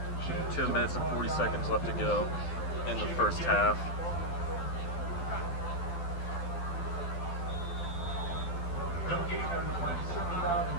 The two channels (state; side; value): late; right; 12 ms